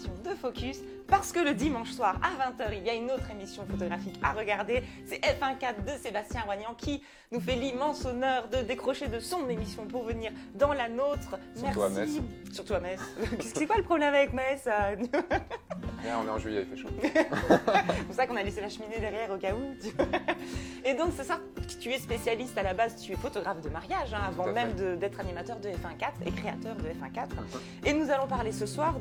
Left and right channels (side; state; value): both; identical; correlation 1.00